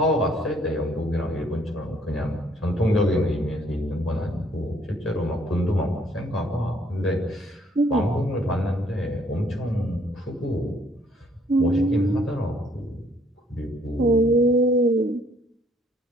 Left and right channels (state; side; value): normal; both; correlation 0.64